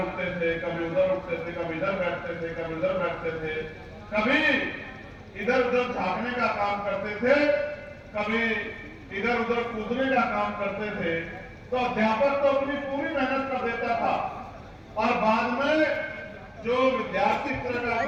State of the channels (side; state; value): both; identical; correlation 1.00